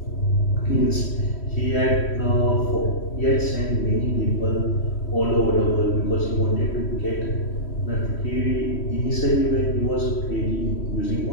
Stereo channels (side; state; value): right; late; 3.1 ms